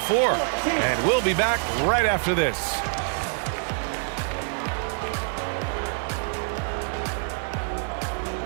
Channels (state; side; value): silent; left; 61 dB below the other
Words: And we'll be back right after this.